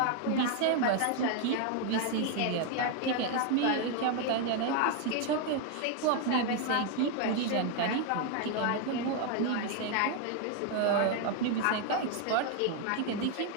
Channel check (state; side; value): different; both; correlation 0.01